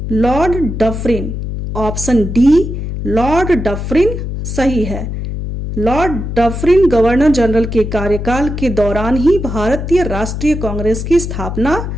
Lord Dufferin. Option D Lord Dufferin सही है। लॉर्ड डफरिन गवर्नर जनरल के कार्यकाल के दौरान ही भारतीय राष्ट्रीय कांग्रेस की स्थापना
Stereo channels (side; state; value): left; noise; hum, 5 dB below the sound